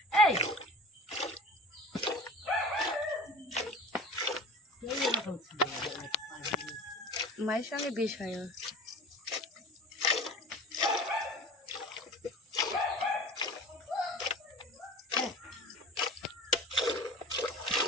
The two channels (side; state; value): both; normal; correlation 0.39